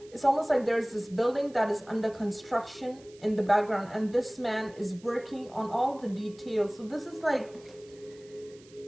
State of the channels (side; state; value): right; noise; hiss, 26 dB below the sound